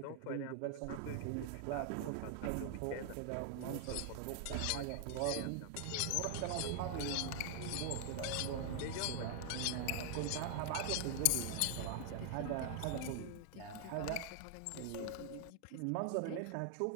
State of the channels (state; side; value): different; both; correlation 0.00